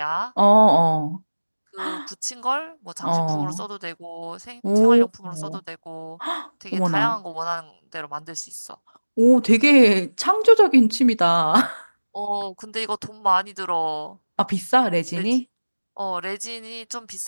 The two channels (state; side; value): inverted; both; correlation -1.00